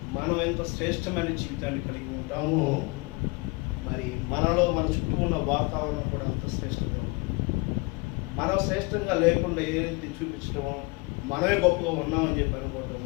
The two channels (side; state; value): right; quieter; 26.6 dB